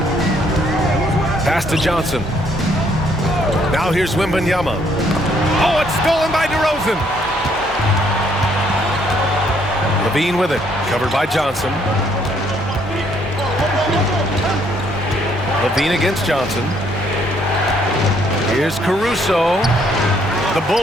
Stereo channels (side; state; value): both; normal; correlation 0.68